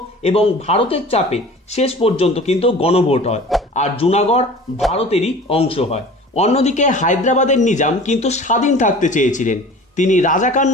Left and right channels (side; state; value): both; normal; correlation 0.42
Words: এবং ভারতের চাপে শেষ পর্যন্ত কিন্তু গণভোট হয়, আর জুনাগড় ভারতেরই অংশ হয়। অন্যদিকে হায়দ্রাবাদের নিজাম কিন্তু স্বাধীন থাকতে চেয়েছিলেন। তিনি রাজাকার